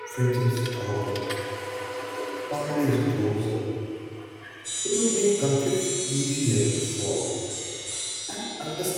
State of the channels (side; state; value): both; identical; correlation 1.00